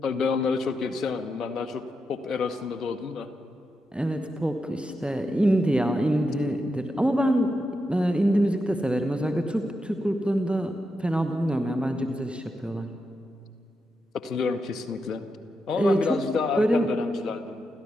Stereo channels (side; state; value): both; normal; correlation 0.86